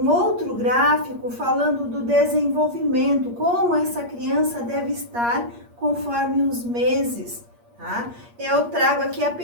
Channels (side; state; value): left; late; 8.5 ms